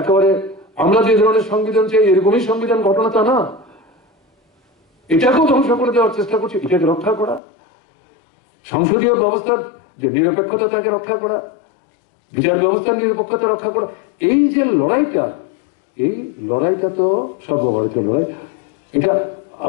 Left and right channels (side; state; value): right; drops out; at 7.4 s